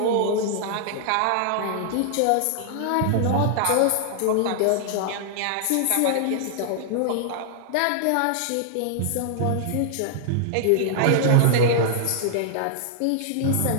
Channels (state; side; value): different; both; correlation -0.01